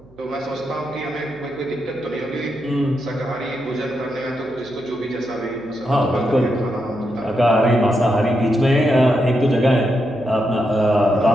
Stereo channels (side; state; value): right; noise; hum, 27 dB below the sound